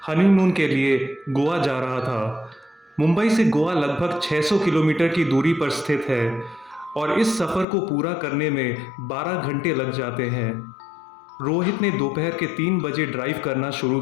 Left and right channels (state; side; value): drops out; right; at 7.7 s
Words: हनीमून के लिए गोवा जा रहा था। मुंबई से गोवा लगभग 600 किलोमीटर की दूरी पर स्थित है और इस सफ़र को पूरा करने में 12 घंटे लग जाते हैं। रोहित ने दोपहर के 3 बजे ड्राइव करना शुरू